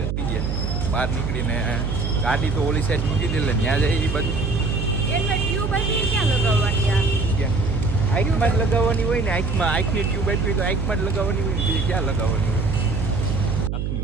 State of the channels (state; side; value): noise; right; hum, 1 dB below the sound